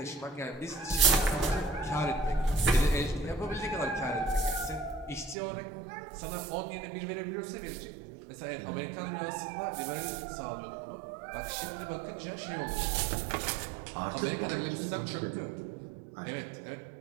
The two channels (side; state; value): left; drops out; at 5.4 s